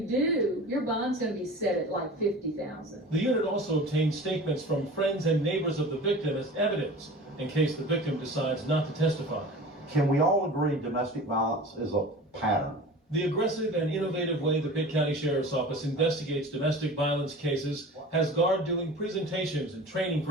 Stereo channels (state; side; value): normal; both; correlation 0.38